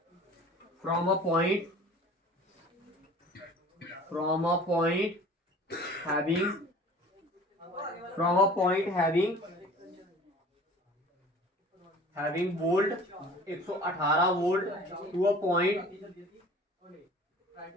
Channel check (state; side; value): normal; both; correlation 0.45